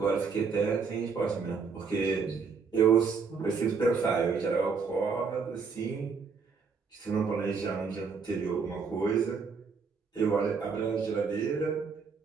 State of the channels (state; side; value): quieter; left; 5.3 dB